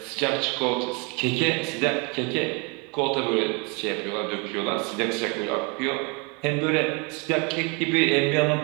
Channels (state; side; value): quieter; left; 31.6 dB